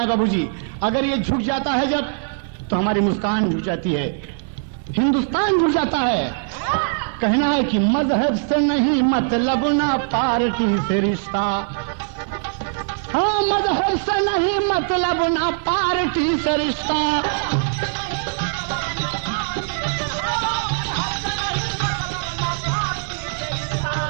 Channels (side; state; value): left; silent; digital silence